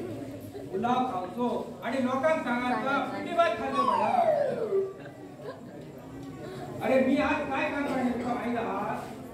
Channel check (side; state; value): both; identical; correlation 1.00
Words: पुलाव खावचो आणि लोकांना सांगायचं पिटी बाज खाल्लं मला अरे मी आज काय काम करणार तुला माहिती आहात